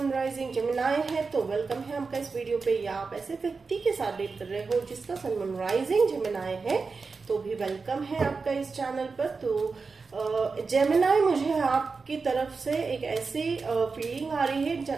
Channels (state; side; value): quieter; left; 4.5 dB